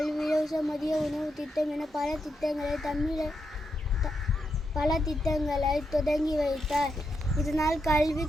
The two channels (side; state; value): both; normal; correlation 0.83